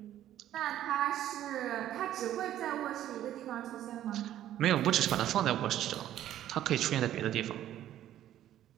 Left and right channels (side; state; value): left; quieter; 12.2 dB